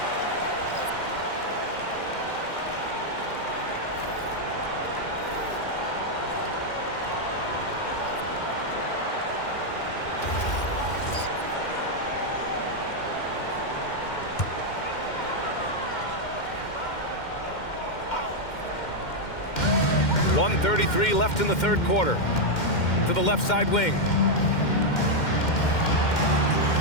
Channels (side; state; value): right; late; 2.1 ms